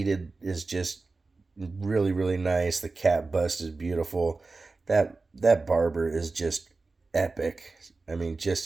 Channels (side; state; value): left; quieter; 3.8 dB